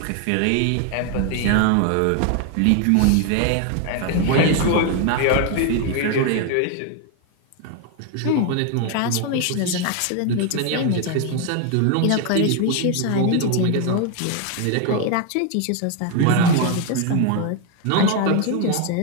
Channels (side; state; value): both; different; correlation 0.01